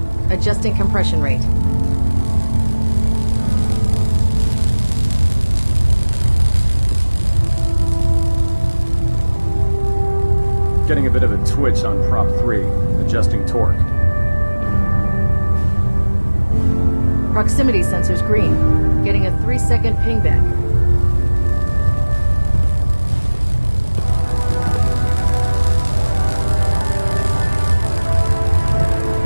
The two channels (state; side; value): inverted; both; correlation -1.00